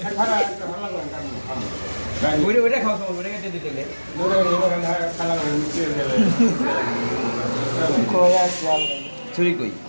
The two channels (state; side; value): inverted; both; correlation -1.00